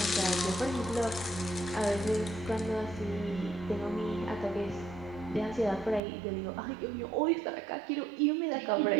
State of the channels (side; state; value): left; drops out; at 6.0 s